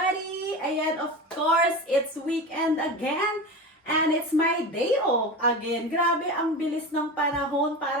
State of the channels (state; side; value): normal; both; correlation 0.27